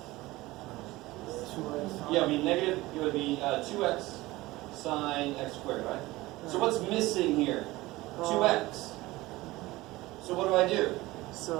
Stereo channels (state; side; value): quieter; left; 19.3 dB